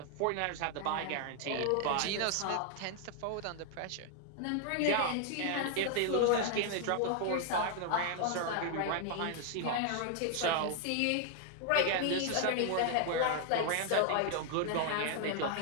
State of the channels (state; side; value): different; both; correlation 0.00